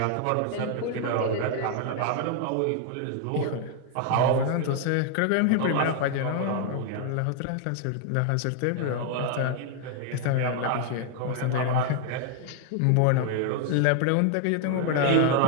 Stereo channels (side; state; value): both; different; correlation 0.00